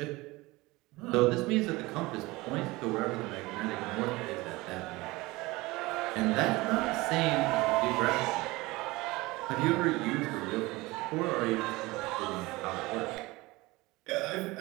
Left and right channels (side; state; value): left; quieter; 21.5 dB